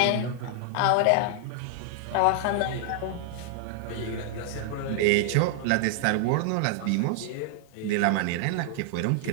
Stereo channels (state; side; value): different; both; correlation 0.00